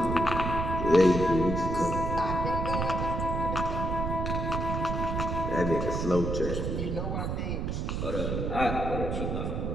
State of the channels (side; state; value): right; noise; rumble, 2 dB below the sound